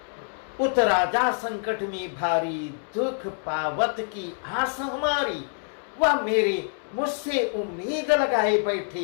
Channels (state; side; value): silent; right; 61 dB below the other